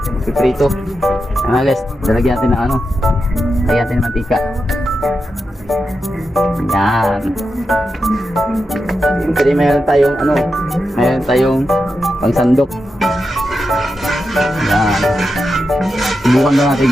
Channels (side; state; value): both; normal; correlation 0.88